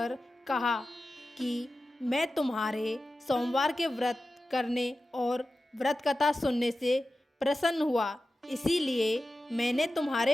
कहा कि मैं तुम्हारे सोमवार के व्रत करने और व्रत कथा सुनने से प्रसन्न हुआ, इसीलिए मैंने तुम्हारे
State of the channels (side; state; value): both; normal; correlation 0.93